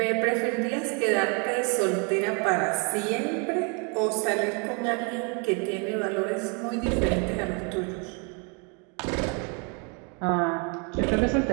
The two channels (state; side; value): quieter; left; 34.9 dB